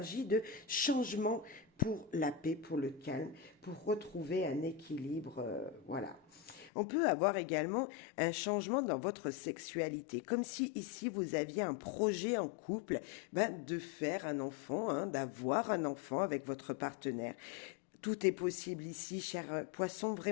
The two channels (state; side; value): drops out; right; at 6.7 s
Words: de changement pour la paix, pour le calme, pour retrouver un équilibre, voilà. On peut avoir également un changement dans votre sexualité, comme si ici vous aviez un projet en couple de faire un enfant, d'avoir un enfant avec votre partenaire. Tout est possible ici, cher poisson.